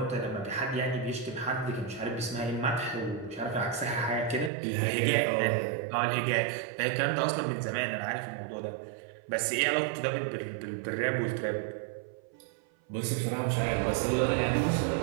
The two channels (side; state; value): left; drops out; at 4.5 s